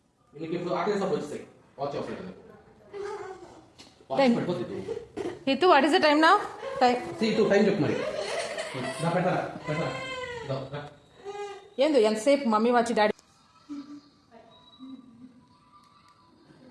నీకు ఇప్పుడు ఆకలి సబ్బు వచ్చేస్తాయి వాచ్ అవసరం Time. Hitu what is the time నా టైం టైం చెప్పు మరి పెట్టరా ఏందో ఎంతసేపు మమ్మీ వచ్చి డాడీ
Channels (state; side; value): identical; both; correlation 1.00